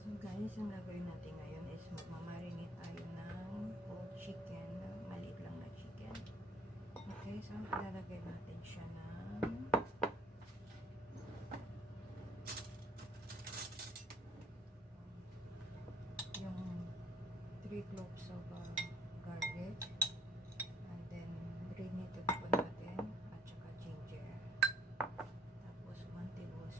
Guys, ang gagawin natin ngayon is magmamarinate tayo ng whole chicken, maliit lang na chicken. Okay, so ilalagay natin siya ng yung 3 cloves of garlic, and then granulated po natin at saka ginger, tapos 1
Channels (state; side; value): normal; both; correlation 0.58